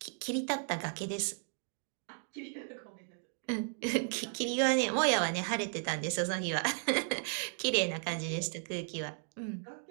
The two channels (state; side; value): silent; left; 54 dB below the other